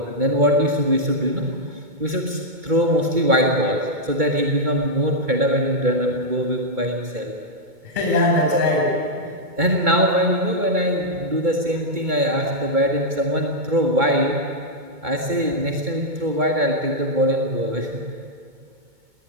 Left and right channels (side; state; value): left; late; 2.2 ms